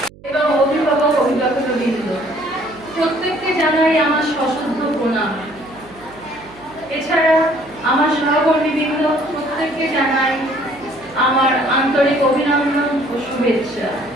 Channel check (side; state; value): right; noise; hum, 23 dB below the sound